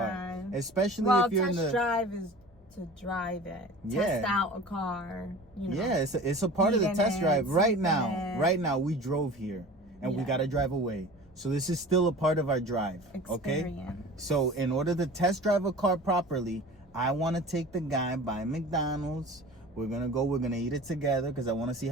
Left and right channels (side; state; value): both; normal; correlation 0.40